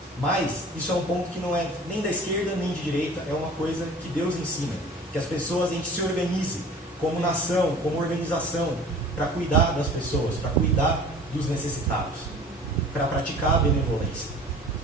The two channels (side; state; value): both; normal; correlation 0.45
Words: Mas isso é um ponto que não é nem da esquerda nem de direita, é uma coisa que Deus ensina, que as pessoas, a gente se organize como nação, como organização, para cuidar das pessoas, para cuidar dos necessitados, para praticar a benevolência.